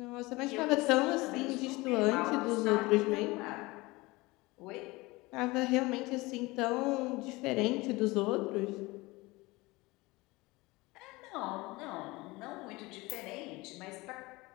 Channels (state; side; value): quieter; right; 22.3 dB